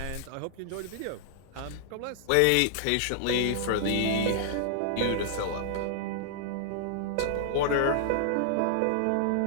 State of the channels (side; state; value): both; different; correlation -0.01